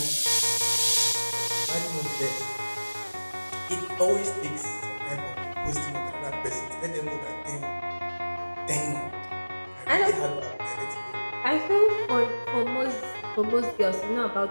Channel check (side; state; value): both; inverted; correlation -1.00